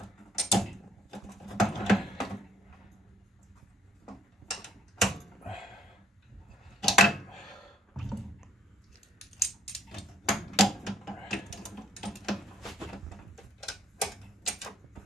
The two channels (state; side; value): normal; both; correlation 0.63